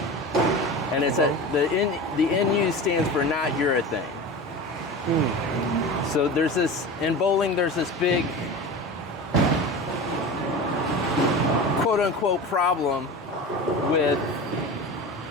and it's the NU stands for not urethane. So in bowling there's this big quote unquote problem with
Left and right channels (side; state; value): both; normal; correlation 0.31